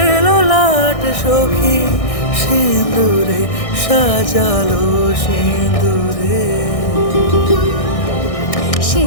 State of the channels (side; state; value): right; late; 1.6 ms